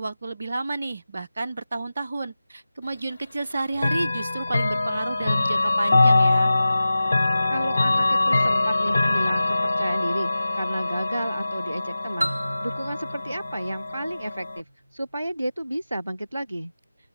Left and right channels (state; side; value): inverted; both; correlation -0.96